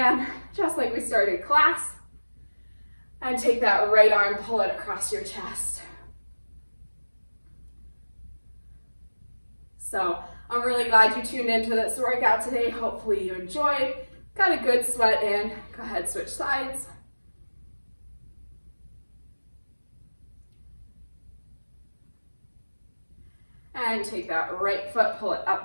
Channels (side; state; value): both; inverted; correlation -1.00